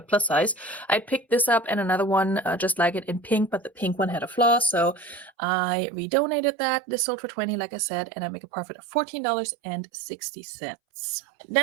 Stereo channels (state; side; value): drops out; left; at 5.3 s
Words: plus size. I picked this up and another one just like it in pink, but the pink one had a flaw, so I redonated that. This sold for $20, like I said, and I make a profit of $14.60.